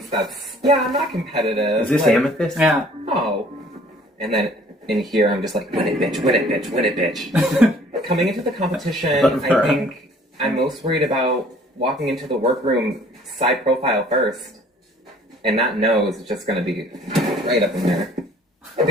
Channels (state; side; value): normal; both; correlation 0.54